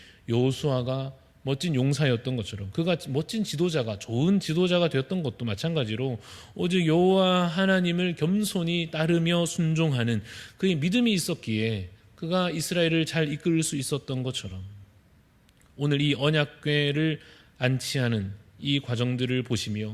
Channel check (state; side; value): identical; both; correlation 1.00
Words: 여호수아가 멋진 용사였던 것처럼 그가 멋진 지도자가 좋은 지도자가 되었던 것도 마찬가지로 오직 여호와 하나님을 겸손히 따르며 순종하는 그의 믿음이 있었기에 그가 이스라엘을 잘 이끌 수 있었던 것처럼 오늘 이 언약궤를 안치하는 이 과정들을